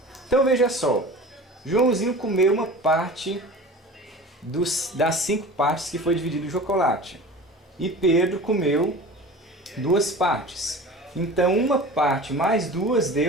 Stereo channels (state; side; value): normal; both; correlation 0.37